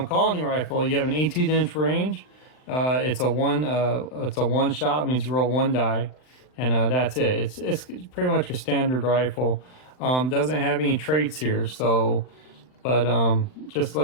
rifle, you have an 18-inch range. It's a one shot, means you roll 1 die, and that's it. It's pretty much your standard rifle. Doesn't have any traits here, so, but just to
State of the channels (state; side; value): late; right; 39 ms